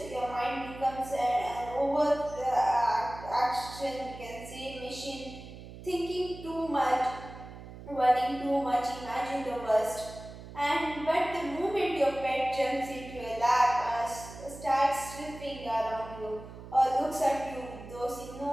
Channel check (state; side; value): noise; right; hum, 14 dB below the sound